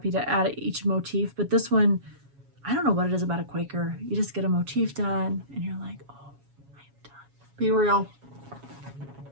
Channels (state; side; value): late; left; 7.2 ms